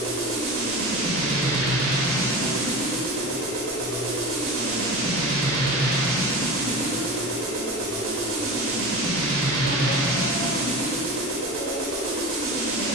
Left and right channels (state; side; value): normal; both; correlation 0.29